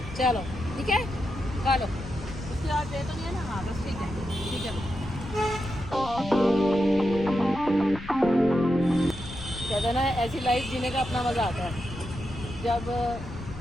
चलो ठीक है, खा लो। उसके बाद दे तो नहीं है ना? हाँ बस ठीक है, ठीक है। कहते ना ऐसी लाइफ जीने का अपना मज़ा आता है। जब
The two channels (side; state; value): left; noise; rumble, 11 dB below the sound